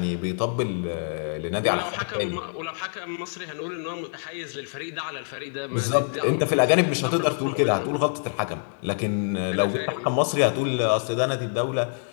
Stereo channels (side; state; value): right; silent; digital silence